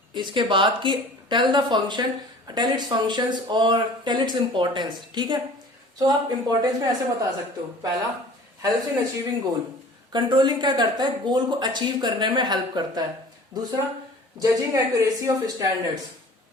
इसके बाद कि tell the function, tell its functions और टेल इट्स इंपॉर्टेंस। ठीक है। सो आप इंपॉर्टेंस में ऐसे बता सकते हो। पहला, helps in achieving goal. Controlling क्या करता है, गोल को अचीव करने में हेल्प करता है। दूसरा, जजिंग एक्यूरेसी ऑफ स्टैंडर्ड्स।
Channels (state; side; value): normal; both; correlation 0.45